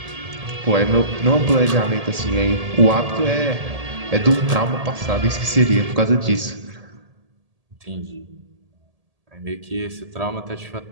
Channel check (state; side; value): late; left; 1.8 ms